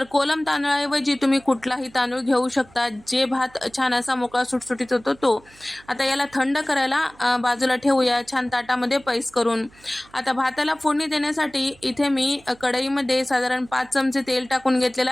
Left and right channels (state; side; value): noise; right; hum, 27 dB below the sound